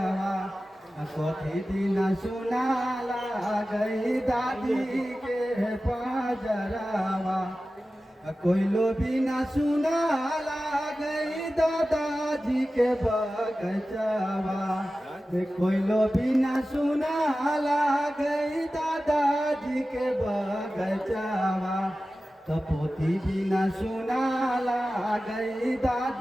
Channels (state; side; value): normal; both; correlation 0.95